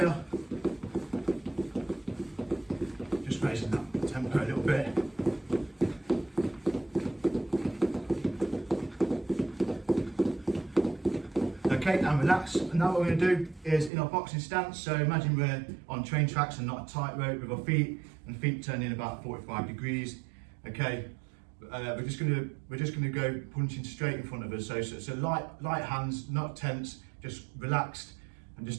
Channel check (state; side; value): drops out; left; at 13.9 s